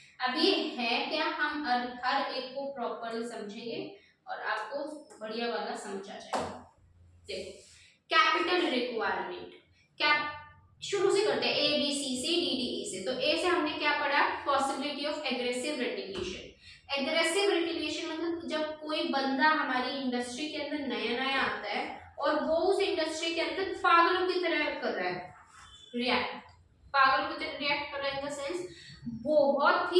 अब ये है क्या, हम हर एक को प्रॉपर्ली समझेंगे और आपको बढ़िया वाला समझ आ जाएगा। देखो, कैपिटल रिक्वायरमेंट, कैप शुरू से करते हैं, ए बी सी से डी डी ई से। तो ए से हमने क्या पढ़ा, possibility of aggressive रेटिलिएशन। Aggressive retaliation मतलब जब कोई बंदा हमारी इंडस्ट्री के अंदर नया नया आता है और वो उस इंडस्ट्री के अंदर पागलों की तरह कर रहा है रिएक्ट, पागलों की तरह रिएक्ट कर रहा है इन द सेंस बहुत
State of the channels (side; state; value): both; identical; correlation 1.00